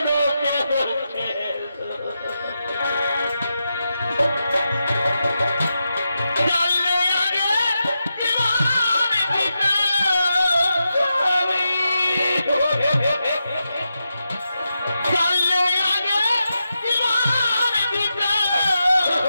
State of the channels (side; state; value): both; inverted; correlation -0.88